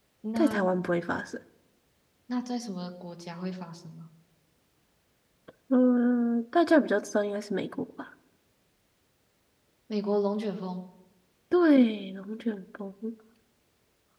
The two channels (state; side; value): identical; both; correlation 1.00